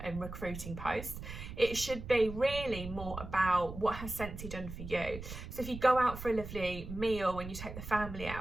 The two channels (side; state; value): right; noise; rumble, 10 dB below the sound